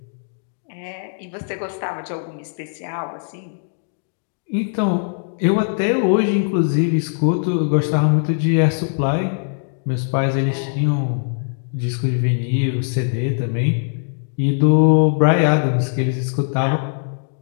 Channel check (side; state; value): right; silent; digital silence